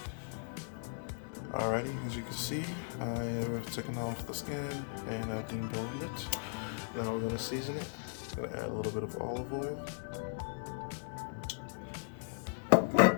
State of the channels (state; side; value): silent; right; digital silence